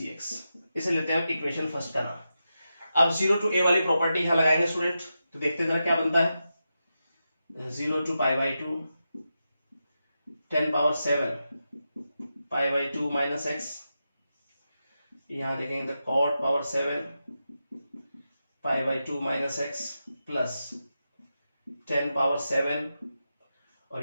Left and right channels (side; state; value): both; inverted; correlation -0.89